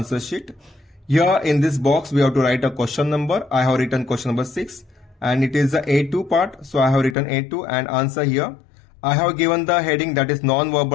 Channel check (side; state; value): right; drops out; at 7.2 s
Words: sheet. Here in this box we have to write a question number. I have written question number 6 and it is the A2 part, so I have written A2 and answer here. I have given the heading that is